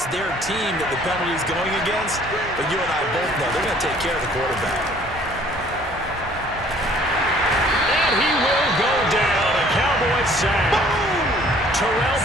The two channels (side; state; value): both; normal; correlation 0.56